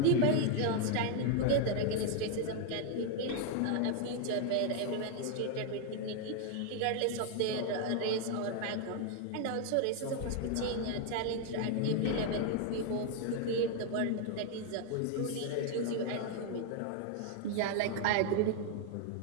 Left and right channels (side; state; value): both; different; correlation 0.00